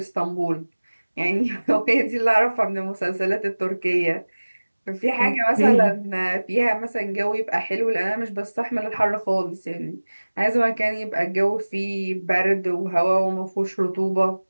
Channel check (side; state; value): both; inverted; correlation -1.00